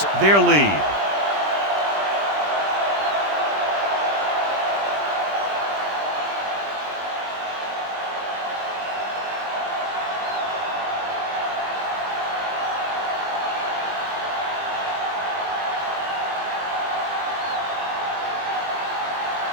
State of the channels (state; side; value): late; left; 20 ms